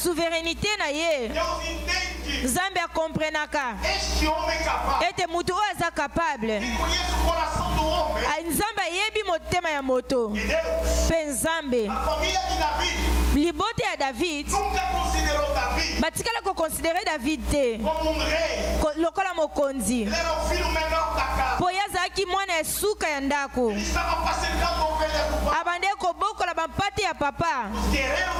na ye. Deus entende Nzambe akomprenaka. este homem capaz, Ete mutu oyo aza capable. que conhece o coração do homem, Nzambe ayebi motema ya moto. e Deus, Mpe Nzambe a família de Davi, libote ya David nunca considerou Davi batikala koconsidere David te como um rei. lokola mokonzi. Ele era o filho menor da casa. Po ye azalaki mwana ya suka ya ndako. Ele estava apacentando ovelhas do pai. Abande kobokola bampate ya papa. Os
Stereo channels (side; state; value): both; identical; correlation 1.00